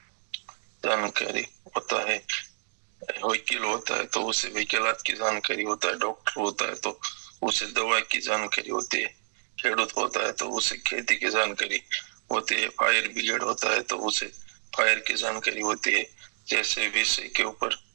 जानकारी होता है। वकील होता है तो उसे वकीलात की जानकारी होता है, डॉक्टर होता है तो उसे दवा की जानकारी होती है, खेडूत होता है तो उसे खेती की जानकारी होती है, फायर ब्रिगेड होता है तो उसे फायर की जानकारी होती है। जैसे विषय के ऊपर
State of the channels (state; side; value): silent; left; digital silence